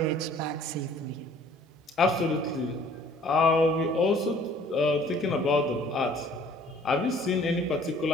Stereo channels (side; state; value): both; normal; correlation 0.55